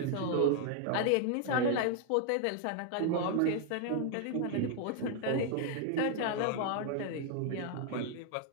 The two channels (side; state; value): both; different; correlation 0.00